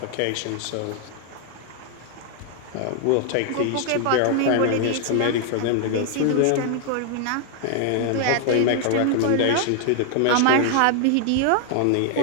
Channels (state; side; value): different; both; correlation 0.00